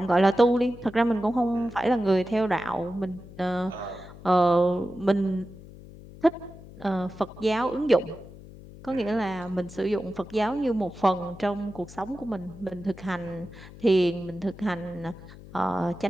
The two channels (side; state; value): left; noise; hum, 17 dB below the sound